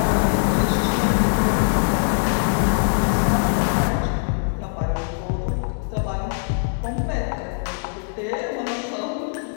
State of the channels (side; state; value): right; silent; digital silence